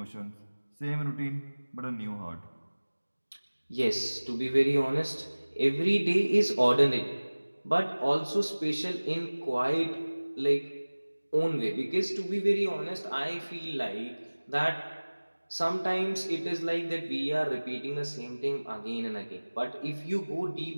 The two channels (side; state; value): both; inverted; correlation -1.00